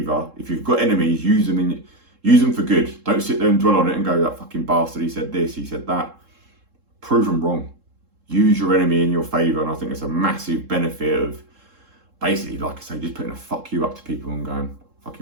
if you've got enemies, use them for good. Don't sit there and dwell on it and go, that fucking bastard, he said this, he said that. Prove them wrong. Use your enemy in your favour, and I think it's a massive benefit of basically, like I say, just putting a fuck you up to people and going,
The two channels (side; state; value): left; late; 3.7 ms